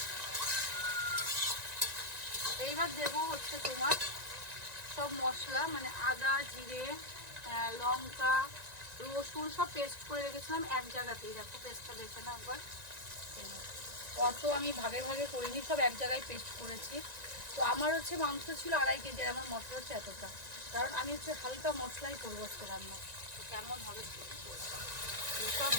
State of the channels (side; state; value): left; late; 1.9 ms